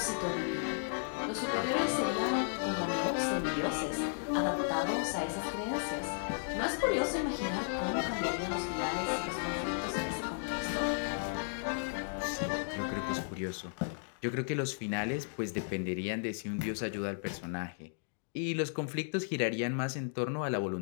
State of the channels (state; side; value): silent; right; digital silence